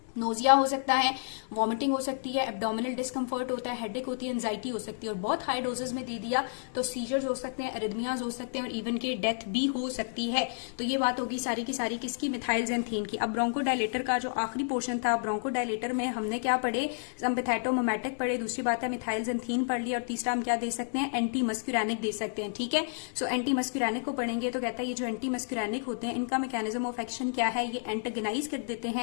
नोजिया हो सकता है, वॉमिटिंग हो सकती है, एब्डोमिनल डिस्कम्फर्ट होता है, हेडेक होती है, एंजाइटी हो सकती है और बहुत हाई डोजेस में दे दिया तो सीजर्स हो सकते हैं, एरिथमियाज हो सकते हैं और इवन के डेथ भी हो सकती है। तो ये बात होगी सारी की सारी किसकी? मिथाइलजेंथीन की। अब ब्रोंकोडायलेटर का जो आखिरी पोर्शन था, ब्रोंकोडायलेटर में हमने क्या पढ़े? सिम्पैथेटोमिमेटिक पढ़े, दूसरी बात है मिथाइलजेंथीन पढ़ लिया और तीसरा हम क्या दे सकते हैं? एंटी मस्क्यूरैनिक दे सकते हैं, ठीक है। सो एंटी मस्क्यूरैनिक को पढ़ेंगे तो कहता है ये जो एंटी मस्क्यूरैनिक होते हैं इनका मैकेनिज्म ऑफ एक्शन क्या है? ये एंटागनाइज कर देते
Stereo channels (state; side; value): silent; right; digital silence